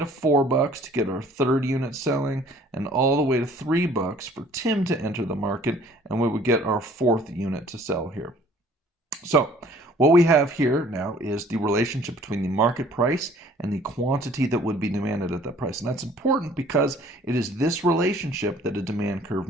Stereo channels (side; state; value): both; normal; correlation 0.55